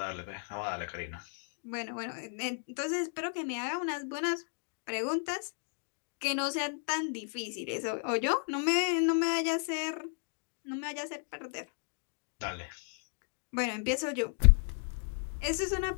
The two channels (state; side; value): silent; right; 55 dB below the other